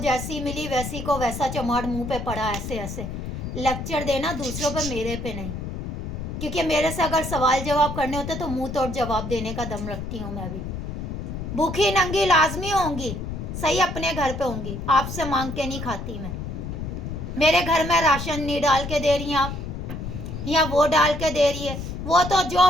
मिली वैसी को वैसा चमाड़ मुंह पे पड़ा, ऐसे ऐसे लेक्चर देना दूसरों पे, मेरे पे नहीं, क्योंकि मेरे से अगर सवाल जवाब करने होते तो मुंह तोड़ जवाब देने का दम रखती हूँ मैं भी। भूखी नंगी लाजमी होंगी, सही अपने घर पे होंगी, आपसे मांग के नहीं खाती मैं। मेरे घर में राशन नहीं डाल के दे रही हैं आप, या वो डाल के दे रही है, वो तो जो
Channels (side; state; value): left; noise; rumble, 6 dB below the sound